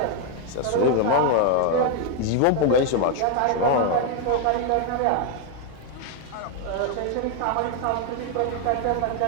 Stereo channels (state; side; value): different; both; correlation 0.01